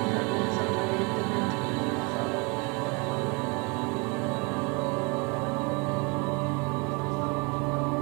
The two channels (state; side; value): quieter; left; 30.1 dB